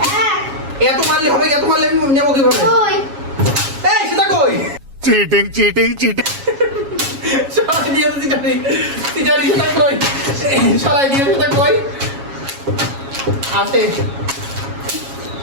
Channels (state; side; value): late; left; 7.3 ms